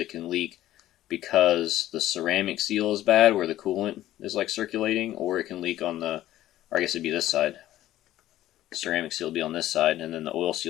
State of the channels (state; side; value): quieter; right; 14.0 dB